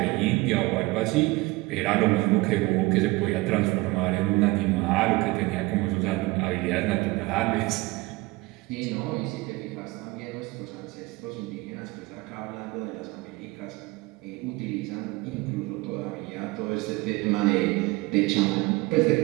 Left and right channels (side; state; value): left; quieter; 22.1 dB